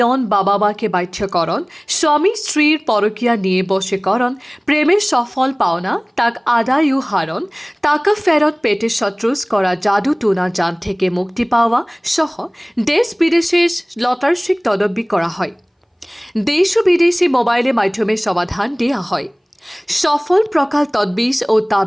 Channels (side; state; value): both; identical; correlation 1.00